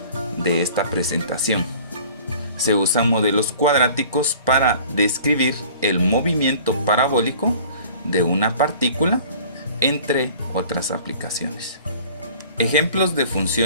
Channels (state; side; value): inverted; both; correlation -0.48